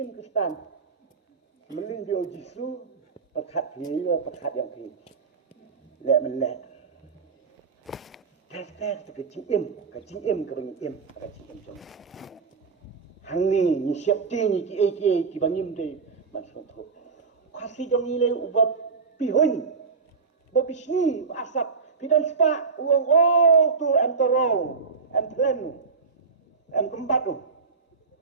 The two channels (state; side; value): quieter; left; 5.0 dB